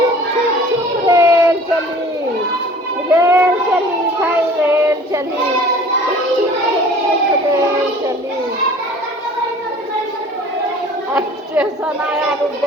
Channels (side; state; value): both; normal; correlation 0.47